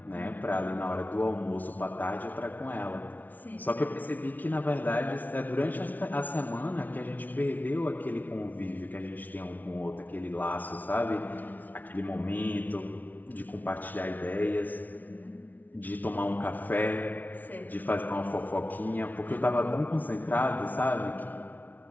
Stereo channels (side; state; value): right; late; 0.080 ms